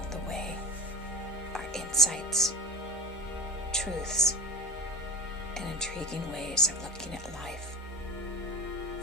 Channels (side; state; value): both; normal; correlation 0.30